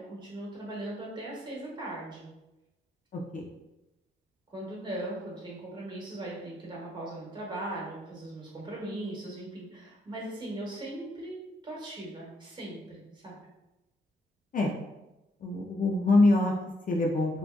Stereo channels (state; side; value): normal; both; correlation 0.78